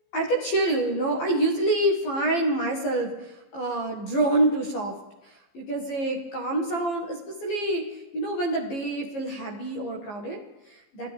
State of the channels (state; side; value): late; right; 15 ms